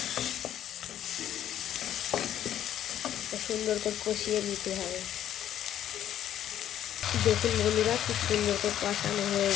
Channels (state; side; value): quieter; right; 11.1 dB